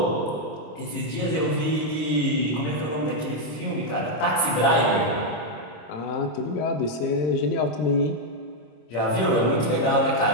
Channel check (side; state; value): right; late; 26 ms